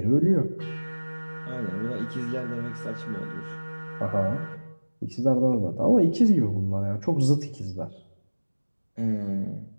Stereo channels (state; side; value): inverted; both; correlation -1.00